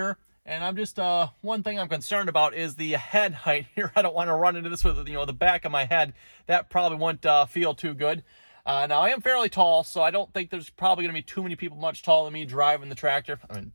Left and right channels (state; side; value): inverted; both; correlation -1.00